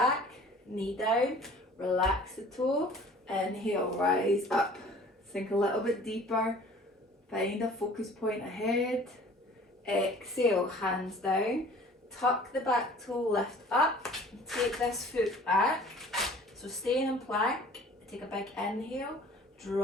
knee down, relax the toe. Inhale, rise up. Sink a little bit deeper. Find a focus point ahead. Exhale, hands down. Tuck the back toe, lift up. Take this foot back. So stay in plank. Take a big inhale.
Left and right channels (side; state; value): both; normal; correlation 0.49